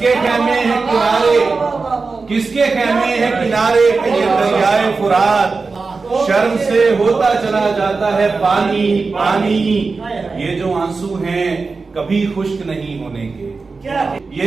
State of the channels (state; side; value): quieter; left; 4.2 dB